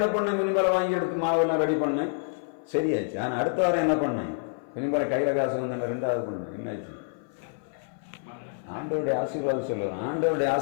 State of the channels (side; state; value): right; silent; 57 dB below the other